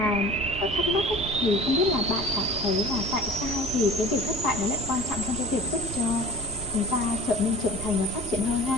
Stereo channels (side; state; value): right; noise; rumble, 10 dB below the sound